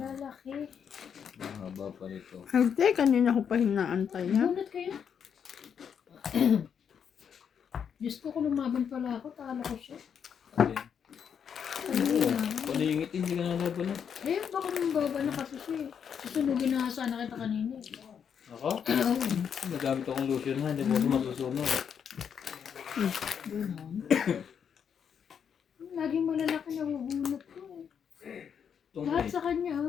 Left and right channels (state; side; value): quieter; right; 7.6 dB